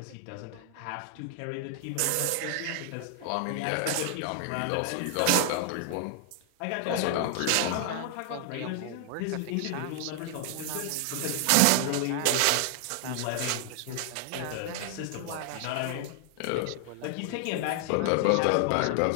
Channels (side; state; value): both; different; correlation 0.00